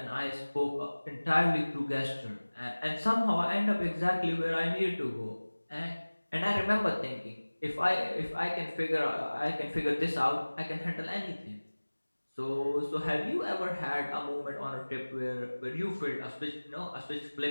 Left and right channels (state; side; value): inverted; both; correlation -1.00